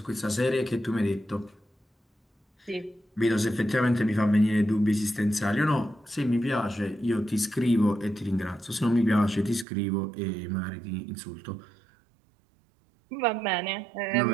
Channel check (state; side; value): drops out; left; at 9.7 s